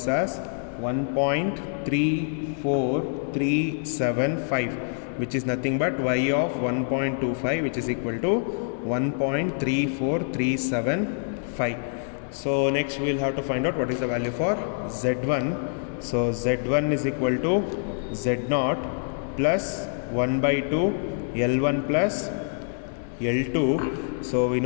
as 1.34375, which is nothing but y of 1.25, which is equal to 1.3435. So next we'll have to find out what is the value for z1. So z1 is equal to z0 plus 1 by 2 L1 plus L2. So we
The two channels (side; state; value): right; silent; 61 dB below the other